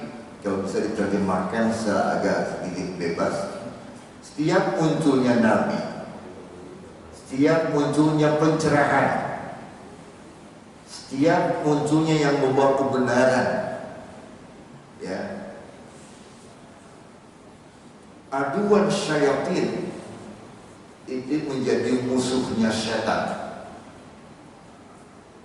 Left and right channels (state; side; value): identical; both; correlation 1.00